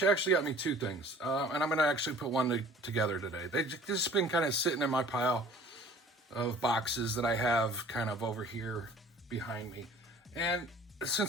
actually got me two things, and I'm going to actually put one together today. They've just been kind of sitting in my pile of boxes that I have kind of over here behind me. And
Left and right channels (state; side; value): normal; both; correlation 0.49